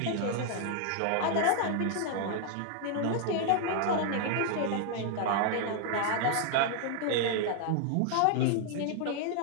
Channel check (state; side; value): different; both; correlation 0.00